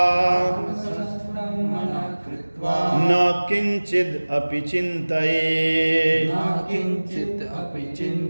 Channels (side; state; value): both; inverted; correlation -1.00